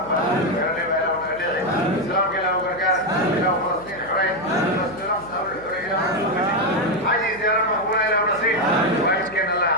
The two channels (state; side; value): noise; right; hum, 20 dB below the sound